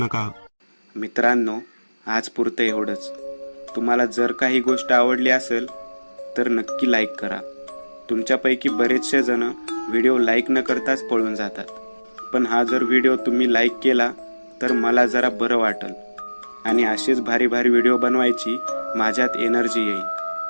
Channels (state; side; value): inverted; both; correlation -1.00